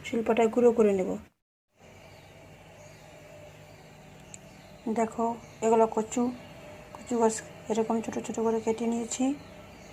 শিলপাটায় গুঁড়ো করে নেব। দেখো, এগুলো কচু গাছ এরকম ছোটো ছোটো করে কেটে নিয়েছি।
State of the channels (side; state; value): both; identical; correlation 1.00